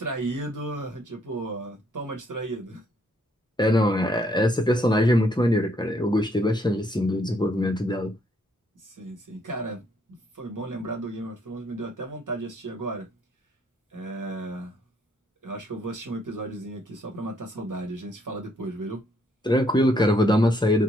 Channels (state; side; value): normal; both; correlation 0.69